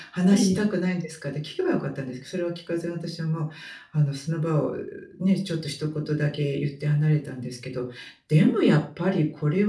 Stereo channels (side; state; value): both; identical; correlation 1.00